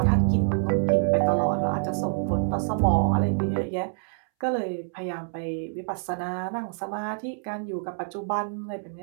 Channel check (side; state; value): left; silent; 61 dB below the other